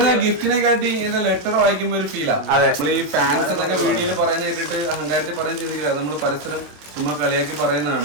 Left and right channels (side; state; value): left; late; 27 ms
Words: ഗിഫ്റ്റിനെ കാട്ടി ഇങ്ങനെ ലെറ്റർ വായിക്കുമ്പോ ഒരു ഫീലാ. അതെ. നമ്മൾ ഈ ഫാൻസ് എന്നൊക്കെ വീഡിയോയിൽ പറയുന്ന കേട്ടിട്ട് അഹങ്കാരത്തിൽ പറയാൻ ചിന്തിക്കില്ല. നമ്മൾ പരസ്പരം ചുമ്മാ കളിയാക്കി